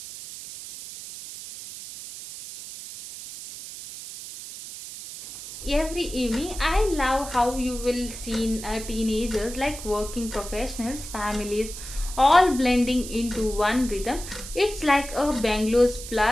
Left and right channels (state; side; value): noise; right; hiss, 11 dB below the sound